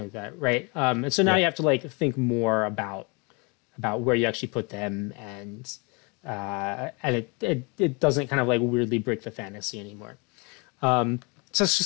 like that, right? And so now you have to like think more about where you actually put them, and it doesn't kind of like weirdly break the fantasy anymore. So it's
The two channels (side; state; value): right; quieter; 30.9 dB